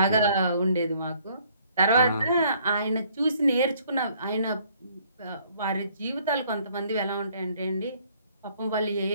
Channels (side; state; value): both; inverted; correlation -0.62